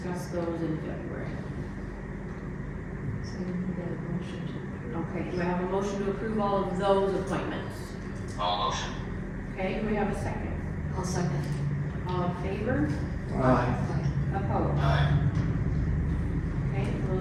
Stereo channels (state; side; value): identical; both; correlation 1.00